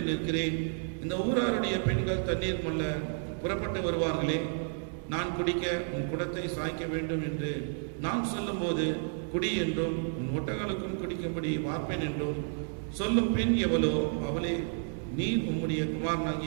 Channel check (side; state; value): left; silent; 57 dB below the other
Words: நிற்கிறேன். இந்த ஊராருடைய பெண்கள் தண்ணீர் மல்ல புறப்பட்டு வருவார்களே, நான் குடிக்க உன் குடத்தை சாய்க்க வேண்டும் என்று நான் சொல்லும்போது குடி என்றும் உன் ஒட்டகளுக்கும் குடிக்கும்படி வார்ப்பேன் என்றும் சொல்லும் பெண் எவளோ அவளே நீர் உம்முடைய